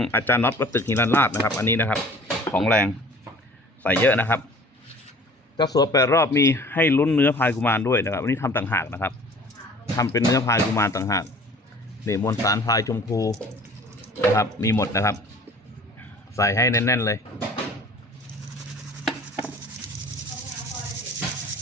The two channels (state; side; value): normal; both; correlation 0.48